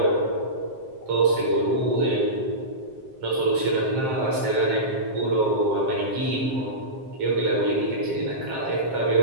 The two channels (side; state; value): left; late; 7.5 ms